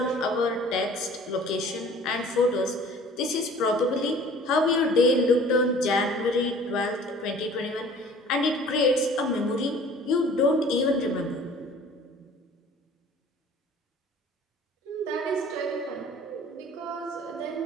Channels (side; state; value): both; normal; correlation 0.49